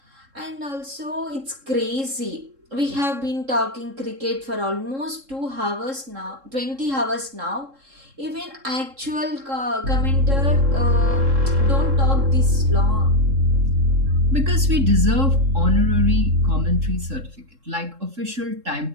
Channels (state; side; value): late; left; 3.7 ms